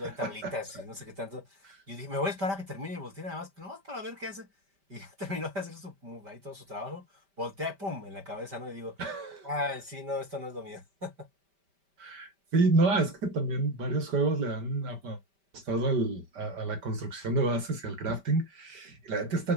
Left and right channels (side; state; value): left; late; 5.1 ms